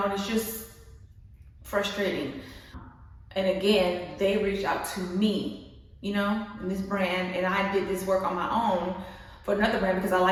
and it's just frustrating. And again, they reached out to me, you know, in this brand, and I did this work on my own for another brand because I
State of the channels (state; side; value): identical; both; correlation 1.00